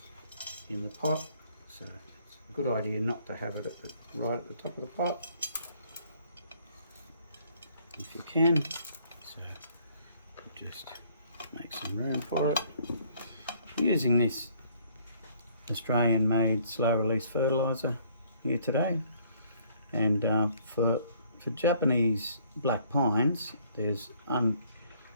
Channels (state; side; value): inverted; both; correlation -0.62